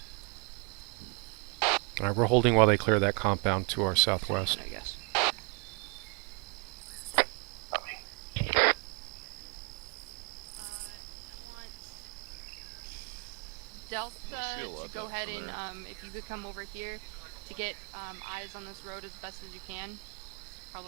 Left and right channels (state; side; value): quieter; left; 32.9 dB